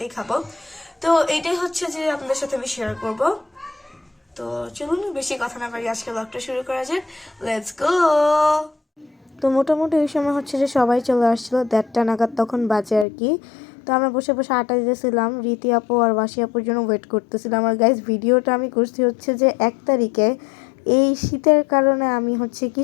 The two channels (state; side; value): drops out; right; at 13.1 s